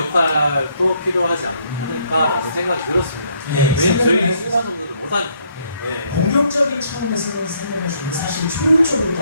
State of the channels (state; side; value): inverted; both; correlation -0.70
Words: 필요하지 않을까라는 생각이 들었습니다. 왜냐면 저희 일반 성도들 못 하니까. 공격적인 차원에서 생각할 수 있는 사실 효율적으로